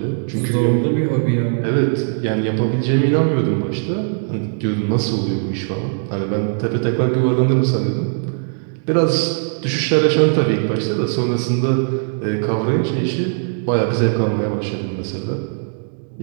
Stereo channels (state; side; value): silent; left; digital silence